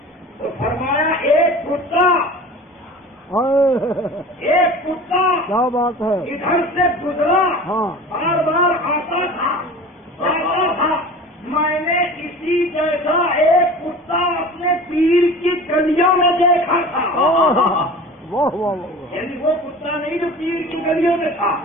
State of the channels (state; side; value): normal; both; correlation 0.38